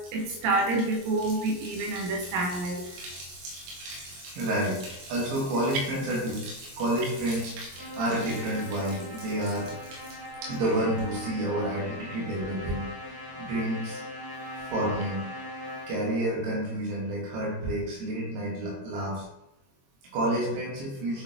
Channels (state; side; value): late; left; 22 ms